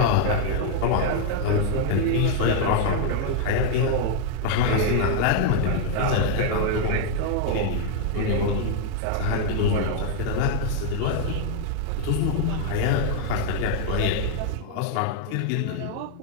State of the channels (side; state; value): both; different; correlation 0.00